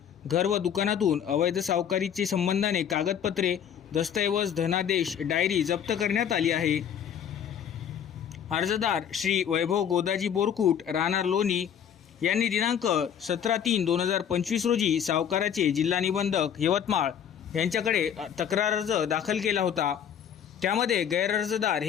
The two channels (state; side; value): quieter; right; 8.7 dB